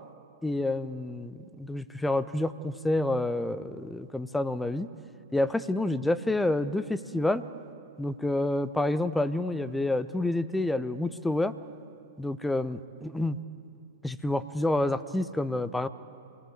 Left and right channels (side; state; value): both; normal; correlation 0.87